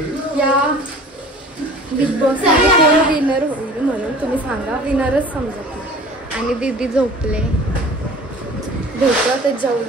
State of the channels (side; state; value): both; normal; correlation 0.44